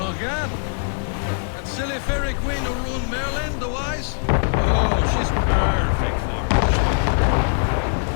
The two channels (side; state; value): right; silent; digital silence